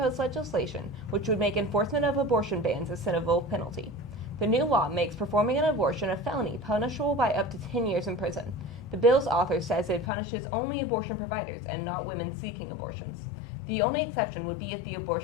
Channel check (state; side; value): drops out; right; at 10.1 s